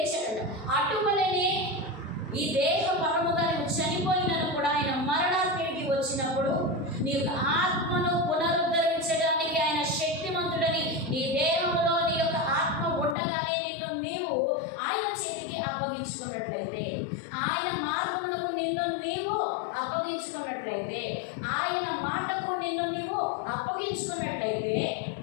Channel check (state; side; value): drops out; right; at 13.2 s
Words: అటువలనే ఈ దేహ పరముగా నువ్వు చనిపోయినను కూడా ఆయన మరణానికి వచ్చినప్పుడు నీ యొక్క ఆత్మను పునరుద్ధరించడానికి ఆయన శక్తిమంతుడని, నీ దేహంలో నీ యొక్క ఆత్మ ఉండగానే నిన్ను నీవు ఆయన చేతికి అప్పగించుకున్నట్లయితే, ఆయన మార్గములకు నిన్ను నీవు అప్పగించుకున్నట్లయితే, ఆయన మాటకు నిన్ను నీవు అప్పగించుకున్నట్లయితే